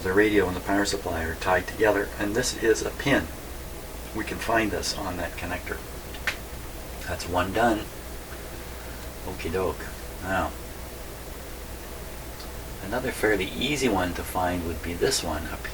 the radio and the power supply are tied together, and this is a pin. We can find this on that connector. That's one done. Okie doke. Now, another fairly easy one to find would be this one up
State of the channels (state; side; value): identical; both; correlation 1.00